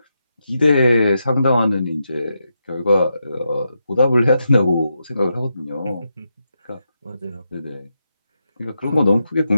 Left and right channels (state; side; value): inverted; both; correlation -0.85